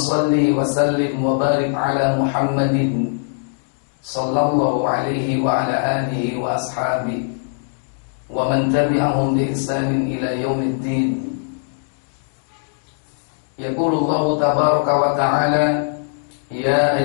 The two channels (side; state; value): right; silent; digital silence